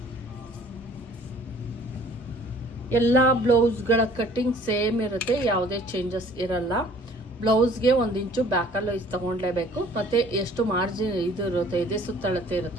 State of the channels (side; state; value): both; normal; correlation 0.53